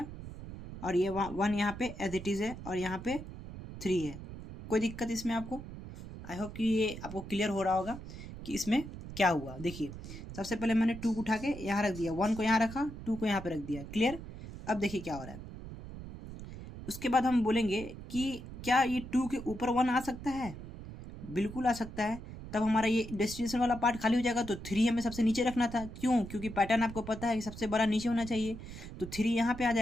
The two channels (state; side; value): noise; right; rumble, 11 dB below the sound